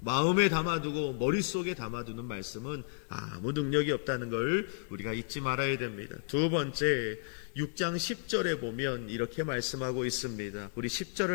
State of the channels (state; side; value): silent; right; digital silence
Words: 담아두고 머릿속에 담아두는 말씀은 아무 능력이 없다는 걸 우리가 잊지 말아야 됩니다. 두 번째, 6장 10절에 보면 이렇게 말씀하고 있습니다. 우리